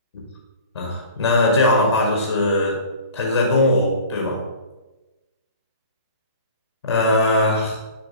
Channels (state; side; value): inverted; both; correlation -0.43